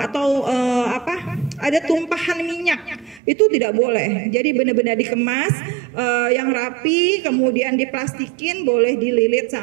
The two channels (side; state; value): left; drops out; at 3.2 s